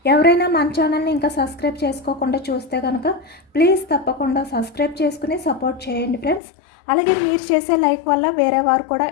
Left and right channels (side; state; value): right; drops out; at 6.4 s